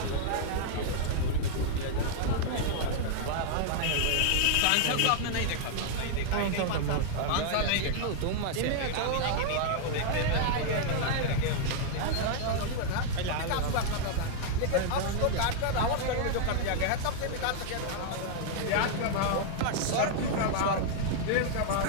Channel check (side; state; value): both; different; correlation -0.01